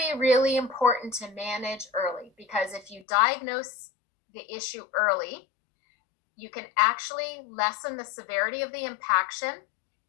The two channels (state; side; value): drops out; right; at 3.1 s